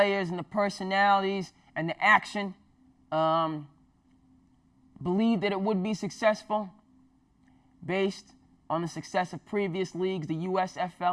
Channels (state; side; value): identical; both; correlation 1.00